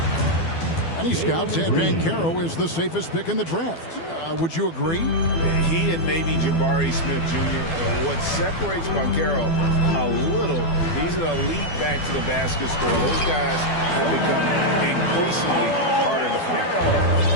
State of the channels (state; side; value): late; right; 12 ms